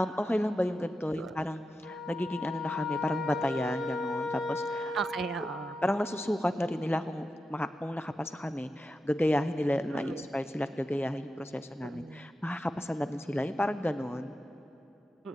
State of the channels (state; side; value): normal; both; correlation 0.89